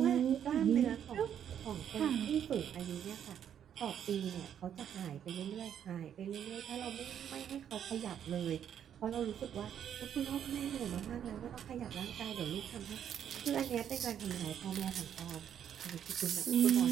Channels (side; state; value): left; quieter; 9.2 dB